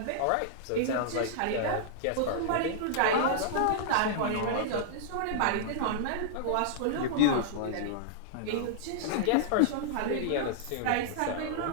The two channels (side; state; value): both; different; correlation -0.02